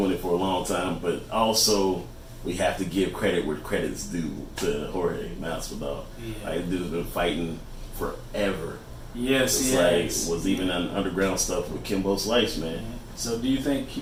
it for a long time. But also, we have to give credit where credit's due to Jorge Masvidal. Yeah. Like, dude's been fighting forever. Yes, it's like was even on underground stuff with Kimbo Slice, man. So, do you think he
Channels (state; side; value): identical; both; correlation 1.00